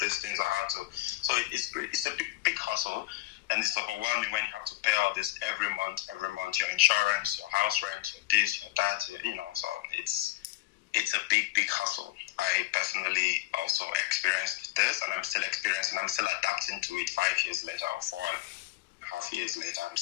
things or how to. So it's a big hustle. And it's overwhelming when you have to pay all this every month, your insurance, your house rent, your this, your that, so it's a big hustle. I personally also experienced this, and I'm still experiencing, I'm still adapting to it 5 years later or 4.5 years later. I'm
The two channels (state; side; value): quieter; right; 17.8 dB